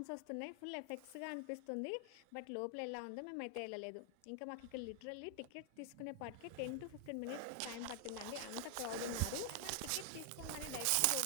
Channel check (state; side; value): different; both; correlation 0.00